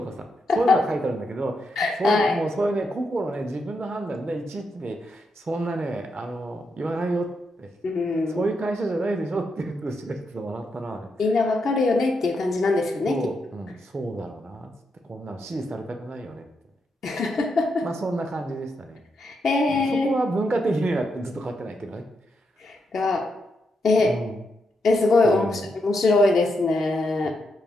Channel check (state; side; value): normal; both; correlation 0.82